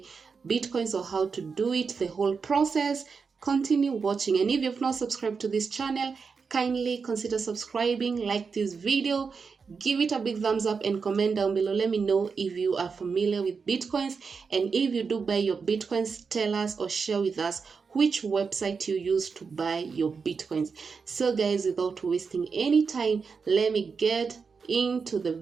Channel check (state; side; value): quieter; left; 5.3 dB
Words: Bitcoins or how to do it, the whole process, continue watching. And if you've not subscribed to this channel, kindly consider subscribing, like this video, give it a big thumbs up and comment down below. Let me know if you are familiar with Bitcoins, and if you do buy your Bitcoins, tell us or share with us which website you use to buy your Bitcoins. So guys, without wasting any time, let me get into the